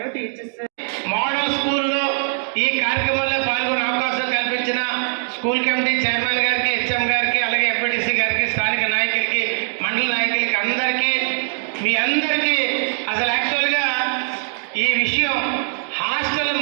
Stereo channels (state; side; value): silent; left; digital silence